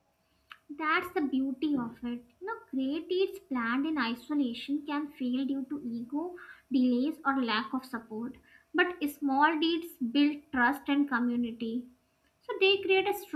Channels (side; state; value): both; identical; correlation 1.00